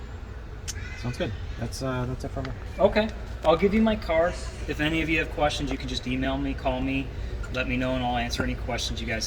Sounds good. That's it for me. Okay, I'll give you my card. If any of you have questions, you can just email me, call me, let me know, and I'll answer any questions you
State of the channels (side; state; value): both; identical; correlation 1.00